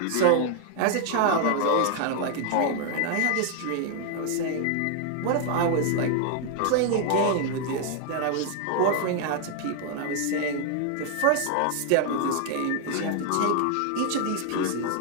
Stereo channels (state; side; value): different; both; correlation 0.00